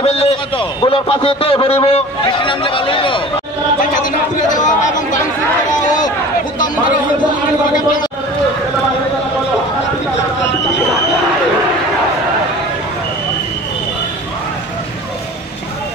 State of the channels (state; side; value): normal; both; correlation 0.41